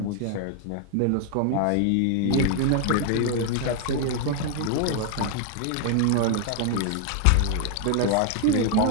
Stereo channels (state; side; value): different; both; correlation 0.00